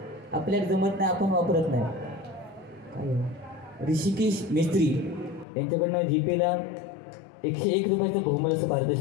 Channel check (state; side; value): drops out; right; at 5.5 s